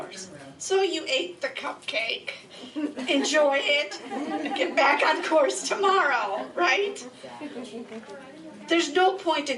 So you ate the cupcake, enjoy it, get back on course tomorrow, right? There's no point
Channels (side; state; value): both; identical; correlation 1.00